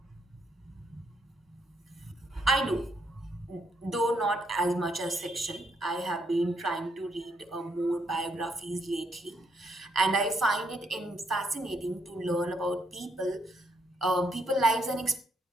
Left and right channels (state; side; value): normal; both; correlation 0.75